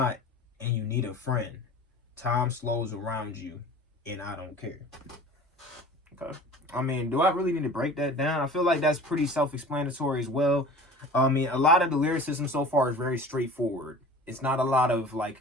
and you need a friend. Time slows around you and I don't care. Okay. I mean, do I really need to break that down? I feel like that's pretty self-explanatory as well. I mean, a lot of the lyricism so far is very straightforward. It's not a lot of like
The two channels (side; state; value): both; normal; correlation 0.41